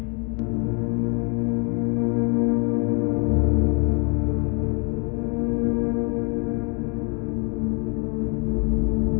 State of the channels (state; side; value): quieter; right; 34.1 dB